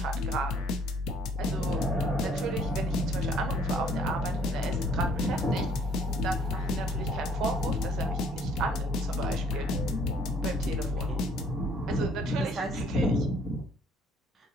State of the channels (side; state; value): both; normal; correlation 0.60